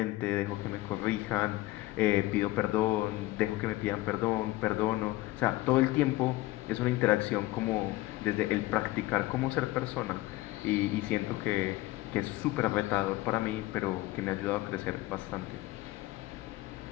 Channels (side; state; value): right; quieter; 18.1 dB